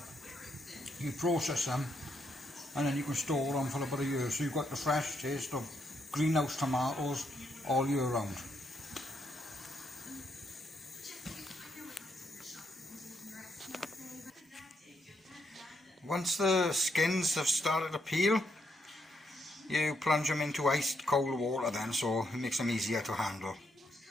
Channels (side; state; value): both; normal; correlation 0.78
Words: you process them and then you can store them for about a year, so you've got the fresh taste of greenhouse tomatoes all year round. Once the skins have started to peel, you plunge them into iced cold water then, so it makes them easier to handle.